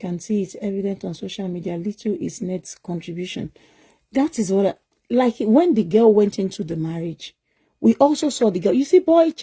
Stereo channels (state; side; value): identical; both; correlation 1.00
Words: see it's evident on social media. Little is Ned's contribution. That is what, like when the girl went into the marriage, we also saw the girl. You see, boy